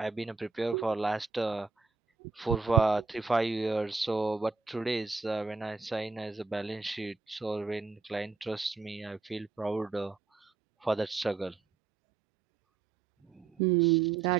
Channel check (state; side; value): quieter; left; 4.6 dB